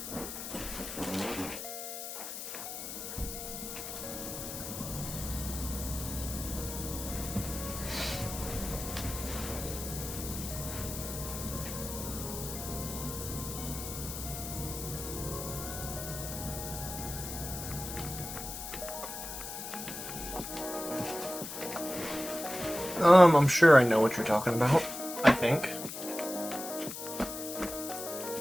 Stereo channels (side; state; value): left; noise; hiss, 8 dB below the sound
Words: I'm sure I know what you're talking about. I think.